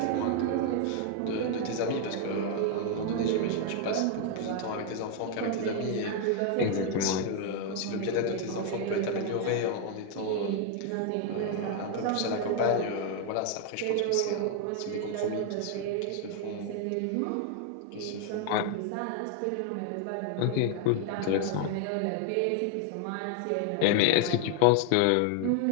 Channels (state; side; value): different; both; correlation 0.00